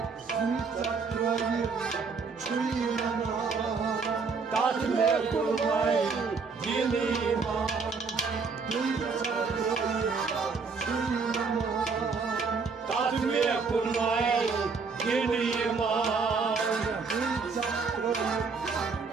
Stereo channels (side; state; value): left; quieter; 4.9 dB